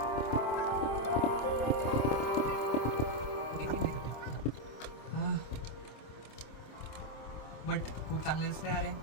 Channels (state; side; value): late; right; 26 ms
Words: बट खूप चांगले दिसते अरे,